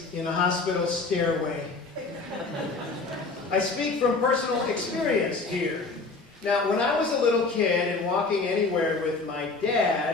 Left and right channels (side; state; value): right; quieter; 3.9 dB